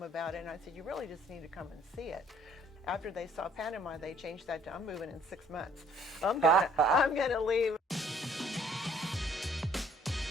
about it, and I said, you really just need to come and see it. After they saw Panama, they changed that to, I'm moving in 6 months. I'm gonna leave.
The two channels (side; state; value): both; normal; correlation 0.59